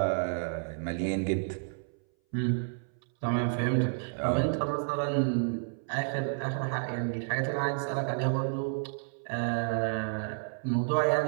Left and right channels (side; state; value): left; silent; 57 dB below the other